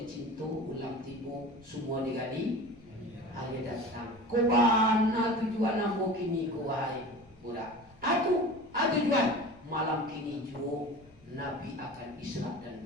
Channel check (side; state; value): left; noise; rumble, 28 dB below the sound